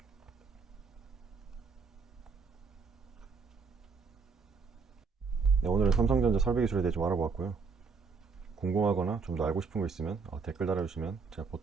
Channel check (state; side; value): quieter; left; 5.0 dB